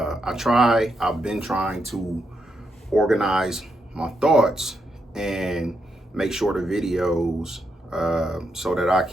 been trying to organize my thoughts and make sure the videos so that I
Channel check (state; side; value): normal; both; correlation 0.81